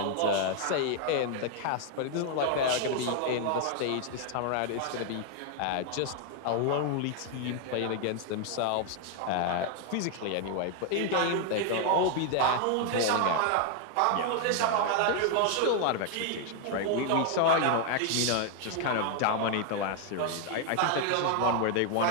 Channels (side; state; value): both; different; correlation 0.00